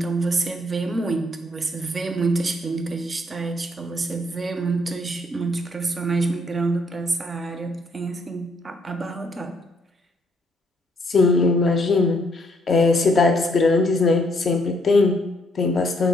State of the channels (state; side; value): normal; both; correlation 0.70